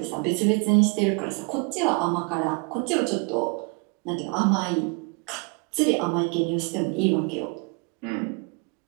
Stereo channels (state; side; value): quieter; left; 32.7 dB